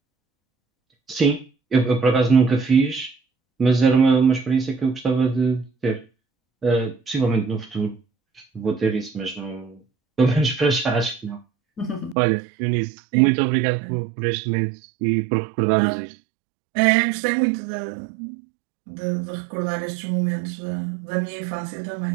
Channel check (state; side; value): drops out; left; at 12.2 s